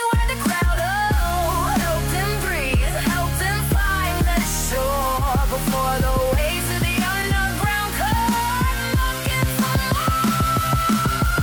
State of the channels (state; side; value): identical; both; correlation 1.00